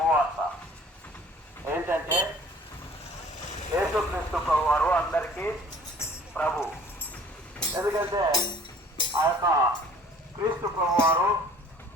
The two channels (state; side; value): normal; both; correlation 0.52